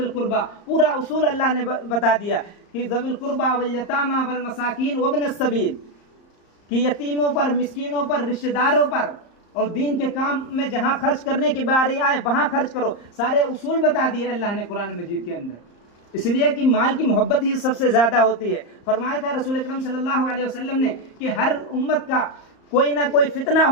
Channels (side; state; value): right; late; 34 ms